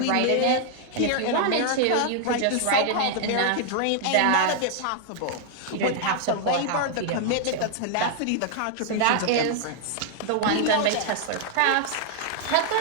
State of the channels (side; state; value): both; different; correlation 0.00